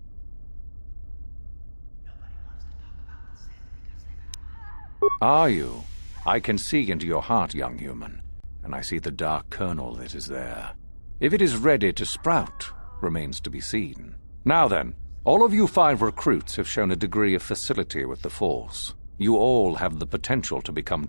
Are you? I can see into your heart, young human, and I see the dark kernel that is there. If it is ready to sprout, remains to be seen. Now then, All of you 5 recruits have shown a degree of facility with the Force. You all have the potential to become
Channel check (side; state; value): both; inverted; correlation -1.00